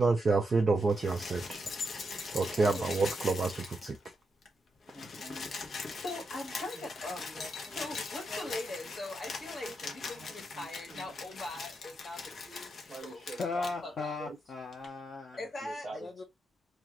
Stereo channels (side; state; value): both; normal; correlation 0.84